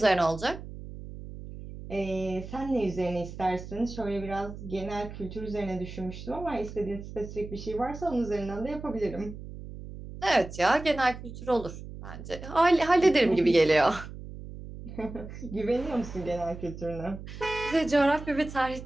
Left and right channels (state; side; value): noise; right; hum, 12 dB below the sound